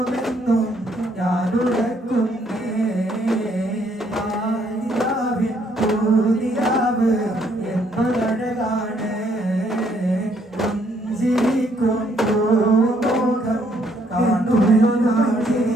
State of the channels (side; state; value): both; normal; correlation 0.69